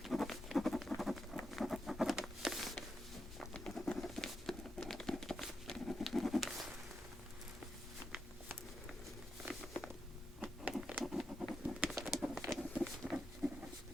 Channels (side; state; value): both; normal; correlation 0.84